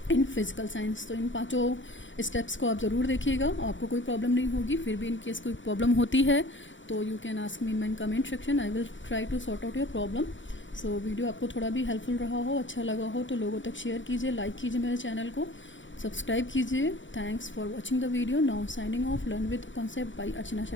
in physical science. तो इन 5 स्टेप्स को आप ज़रूर देखिएगा, आपको कोई प्रॉब्लम नहीं होगी। फिर भी इन केस कोई प्रॉब्लम होती है तो you can ask me in my comment section, I will try to sort out your problem. So video आपको थोड़ा भी हेल्पफुल रहा हो, अच्छा लगा हो तो लोगों तक शेयर कीजिए, लाइक कीजिए मेरे चैनल को, सब्सक्राइब कीजिए। Thanks for watching the video. Now signing off, learn with concept bye Archana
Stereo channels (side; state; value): right; late; 0.55 ms